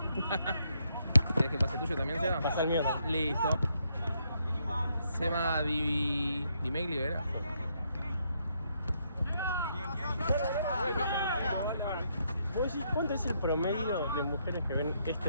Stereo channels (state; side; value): inverted; both; correlation -0.76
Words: ¿Quieres que pase tuyo también, Seba? Pasa el mío. Listo. Seba Di Megli, ¿verdad? ¿Vos decís cuánto es el promedio de mujeres que ven